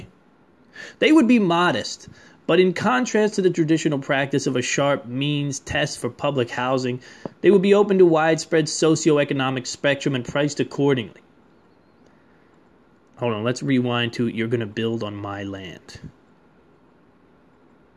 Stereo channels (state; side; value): identical; both; correlation 1.00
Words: They would be modest, but in contrast to the traditional practice of a sharp means test for public housing, they would be open to widespread socioeconomic spectrum and priced accordingly. Hold on, let's rewind to you're going to build on my land.